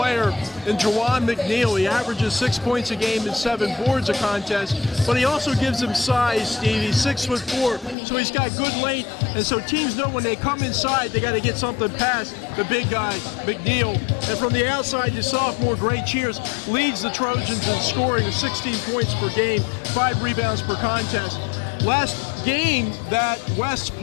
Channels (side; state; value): right; drops out; at 8.0 s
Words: in Juwan McNeil. He averages 6 points a game and 7 boards a contest, but he also gives him size, Steve. He's 6'4", so he's got good length, and so teams know when they come inside, they got to get something past the big guy, McNeil. And from the outside, the sophomore, Gray Cheers, leads the Trojans in scoring with 16 points per game, 5 rebounds per contest. Last game that West